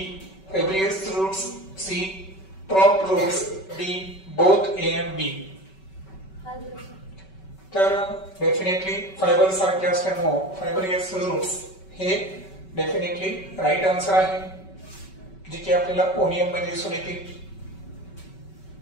fibrous roots, C prop roots, D both A and B. तर डेफिनेटली फायबर सारखे असल्यामुळे फायब्रियस रूट्स हे डेफिनेटली राईट आन्सर आहे, जे की आपल्याला ओनियन मध्ये दिसून येतील.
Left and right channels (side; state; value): right; late; 5.3 ms